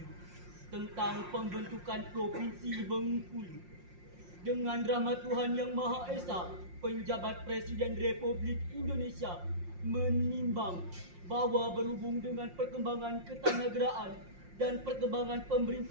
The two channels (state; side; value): late; left; 5.6 ms